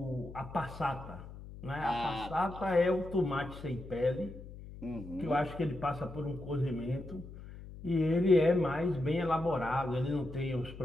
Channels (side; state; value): left; noise; hum, 14 dB below the sound